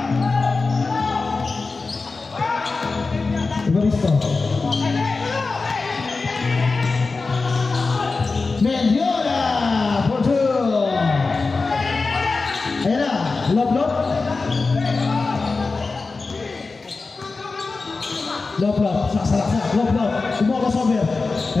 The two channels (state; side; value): quieter; right; 4.0 dB